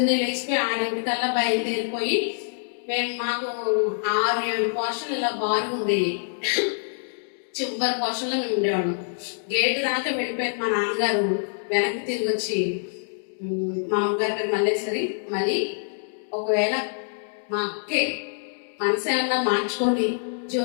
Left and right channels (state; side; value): silent; right; digital silence